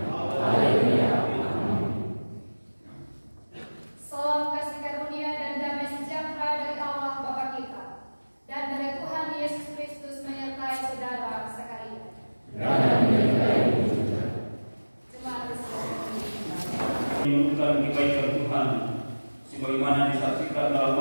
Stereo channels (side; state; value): both; inverted; correlation -1.00